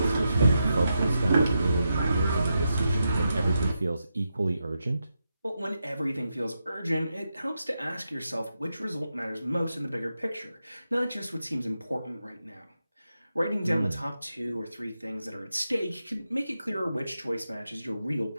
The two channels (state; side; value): inverted; both; correlation -0.86